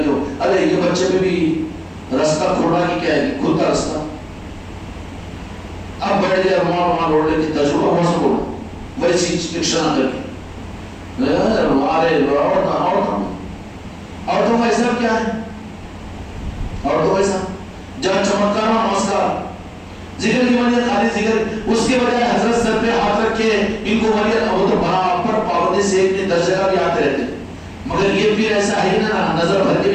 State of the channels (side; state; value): both; identical; correlation 1.00